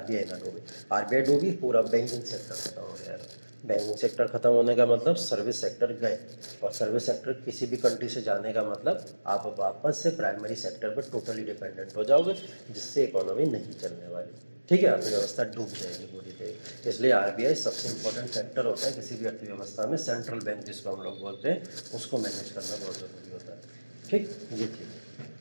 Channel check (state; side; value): inverted; both; correlation -1.00